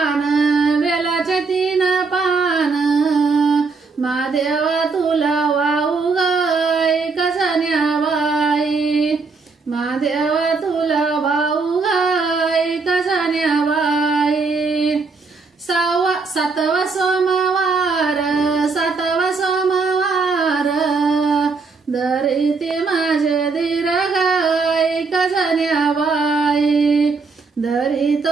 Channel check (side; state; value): left; quieter; 4.4 dB